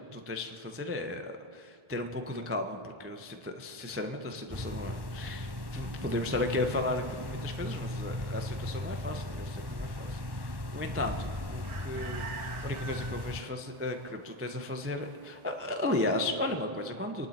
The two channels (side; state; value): left; late; 1.1 ms